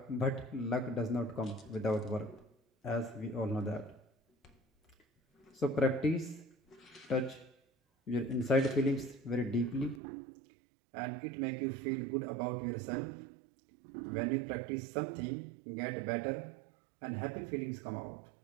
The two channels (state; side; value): drops out; left; at 10.0 s